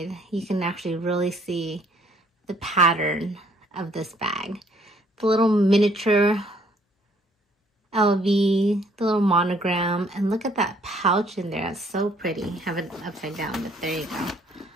You can actually really see the pattern of this bag. The little miniature LV, the little monogram, and look at that pouch in there. That's so pretty. Have it upside down, but there you go.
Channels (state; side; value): normal; both; correlation 0.63